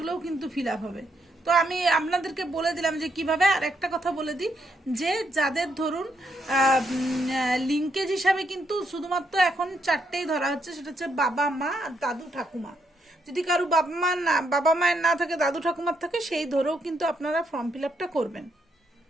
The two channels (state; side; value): normal; both; correlation 0.77